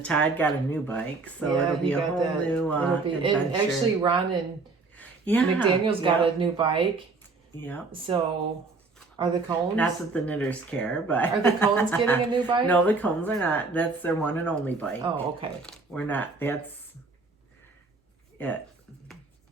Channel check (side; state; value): left; quieter; 3.9 dB